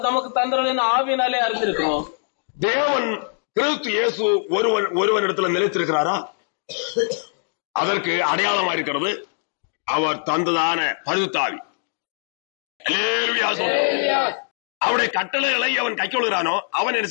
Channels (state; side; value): silent; right; digital silence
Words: நமக்கு தந்தவரின் ஆவியினாலே அறிந்திருக்கிறோம். தேவன் கிறிஸ்து இயேசு ஒருவன் இடத்துல நிலைத்திருக்கிறாரா? அதற்கு அடையாளமா இருக்கிறது அவர் தந்ததான பரிசுத்த ஆவி. அவருடைய கட்டளைகளை அவன் கைக்கொள்கிறானோ அவன் என்ன